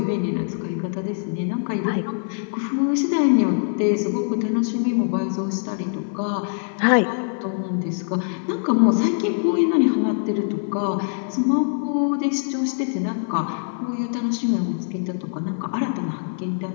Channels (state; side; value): silent; right; digital silence